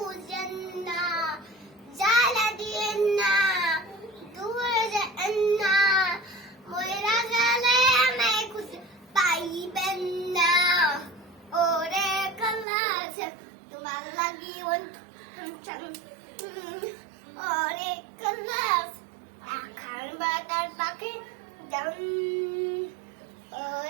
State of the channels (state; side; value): drops out; left; at 12.7 s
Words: না, জ্বালা দিয়েন না, দূরে যান না, ময়রা গেলে আমায় খুঁজে পাইবেন না। ওরে কালাস তোমার লাগি ওরে কালাস আখার বাটার পাখি জান